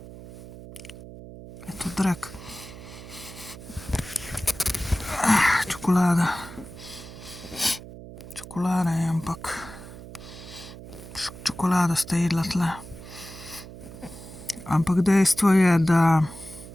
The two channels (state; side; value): noise; right; hum, 15 dB below the sound